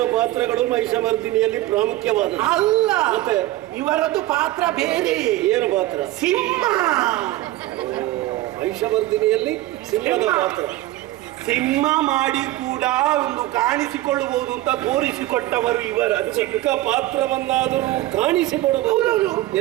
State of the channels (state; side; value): quieter; left; 16.6 dB